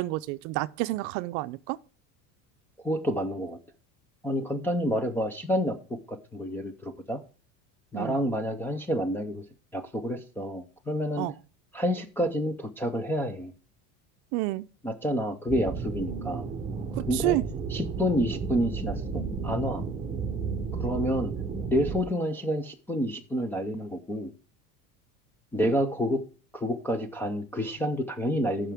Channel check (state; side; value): normal; both; correlation 0.57